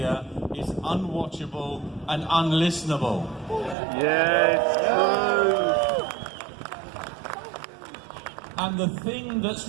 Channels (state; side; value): drops out; left; at 3.8 s